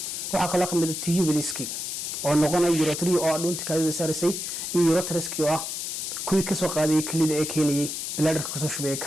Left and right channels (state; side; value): noise; left; hiss, 4 dB below the sound